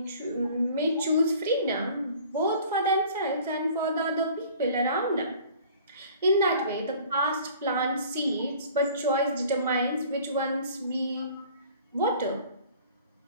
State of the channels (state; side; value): inverted; both; correlation -0.49